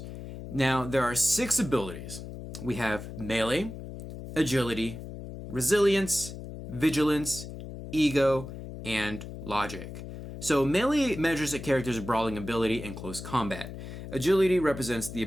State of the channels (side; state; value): left; noise; hum, 10 dB below the sound